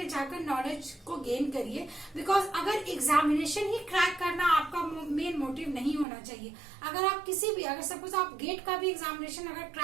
जाकर नॉलेज को गेन करिए, बिकॉज अगर एग्जामिनेशन ही क्रैक करना आपका मेन मोटिव नहीं होना चाहिए। अगर आप किसी भी अगर सपोज आप गेट का भी एग्जामिनेशन अगर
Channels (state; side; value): drops out; left; at 6.1 s